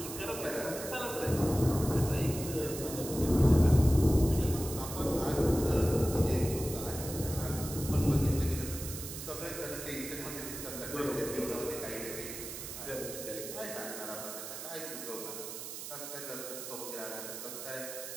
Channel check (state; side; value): noise; right; hiss, 8 dB below the sound